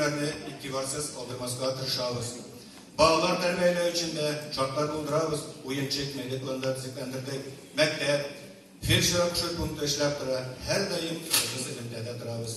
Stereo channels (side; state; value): both; identical; correlation 1.00